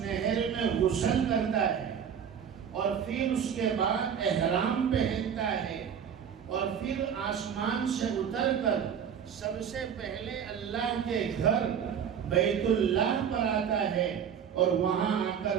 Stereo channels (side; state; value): left; quieter; 8.0 dB